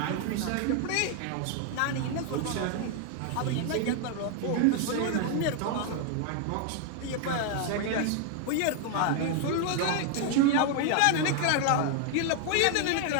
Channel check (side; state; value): both; different; correlation 0.00